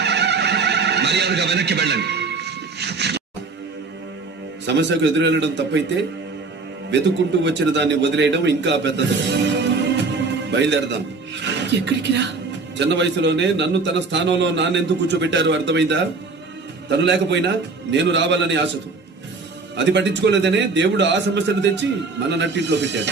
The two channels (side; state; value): left; quieter; 4.0 dB